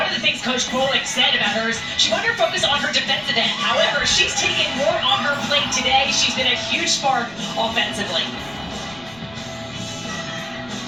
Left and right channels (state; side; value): noise; left; rumble, 24 dB below the sound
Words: of the things Coach Pollock said about her is she wanted to focus on her defensive end. However, she's taken more on her plate today. She's been a huge spark offensively.